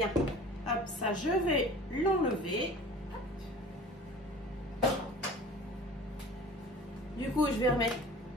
Hop, ça, je vais l'enlever. Du coup, je vais remettre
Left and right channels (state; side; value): normal; both; correlation 0.42